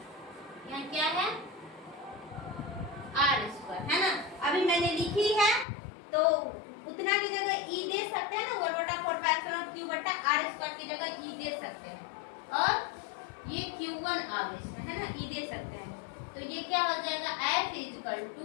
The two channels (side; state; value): right; drops out; at 5.7 s